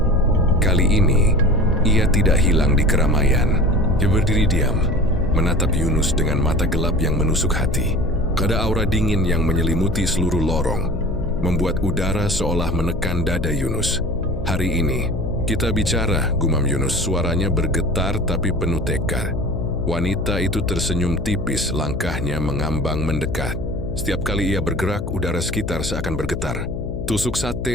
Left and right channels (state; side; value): noise; left; hum, 7 dB below the sound